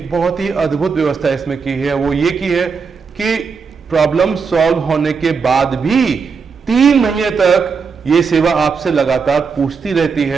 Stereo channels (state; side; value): quieter; left; 5.5 dB